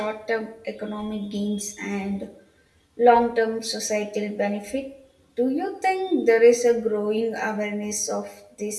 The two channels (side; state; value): both; identical; correlation 1.00